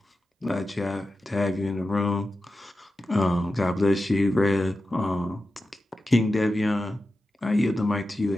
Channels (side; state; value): both; normal; correlation 0.92